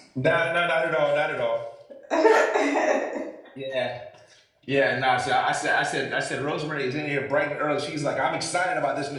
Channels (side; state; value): both; identical; correlation 1.00